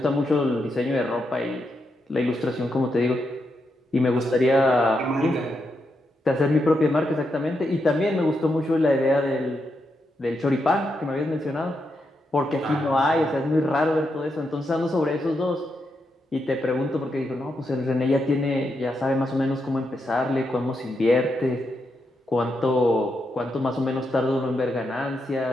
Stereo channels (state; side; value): normal; both; correlation 0.83